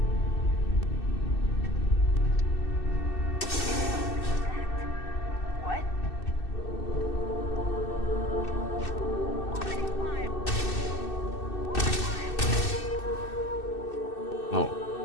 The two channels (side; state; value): right; late; 2.6 ms